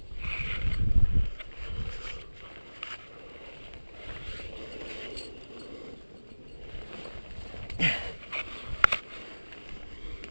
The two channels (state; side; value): inverted; both; correlation -1.00